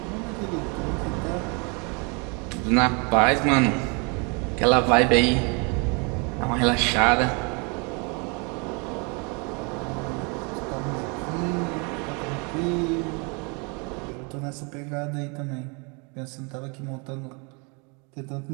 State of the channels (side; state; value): left; quieter; 32.7 dB